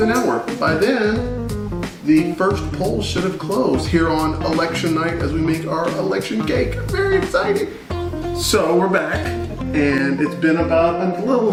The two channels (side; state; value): both; identical; correlation 1.00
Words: an hour. By then, the first poll should have closed here on election night as we make our election cake. Very exciting. So we're back, and it's been about a